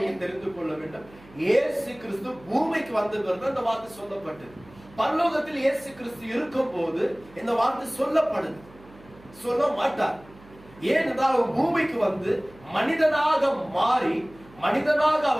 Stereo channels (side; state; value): right; noise; hum, 23 dB below the sound